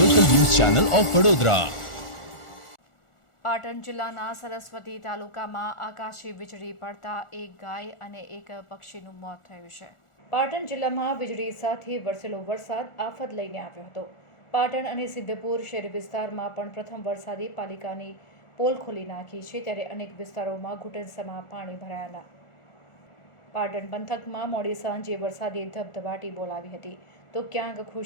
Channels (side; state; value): right; late; 1.4 ms